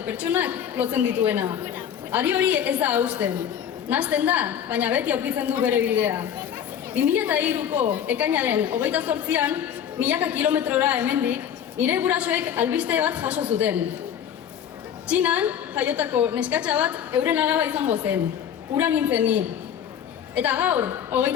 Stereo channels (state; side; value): quieter; right; 9.0 dB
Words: pertsonak lotzen dituena. Ari hori ez da hausten. Nahasten da, baina beti aurkitzen du bere bidea. 2003ko ekainaren 28an, milaka kilometrora hemendik, nire gurasoek albiste bat jaso zuten. Txinan, jaiotako neskatxa bat euren alaba izango zen. Ura nintzen ni. Eta gaur,